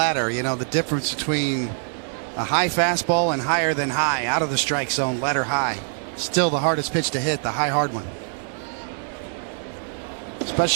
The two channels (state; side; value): silent; left; 56 dB below the other